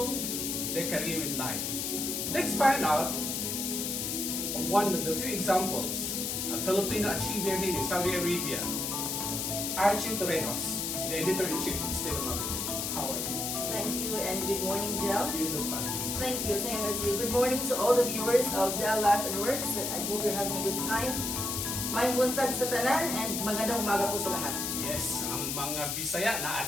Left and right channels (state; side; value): noise; left; hiss, 2 dB below the sound